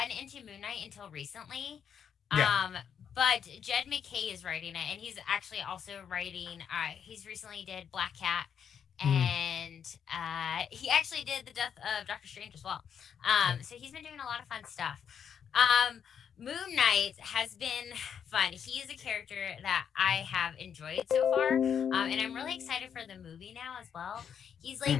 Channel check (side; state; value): right; quieter; 7.9 dB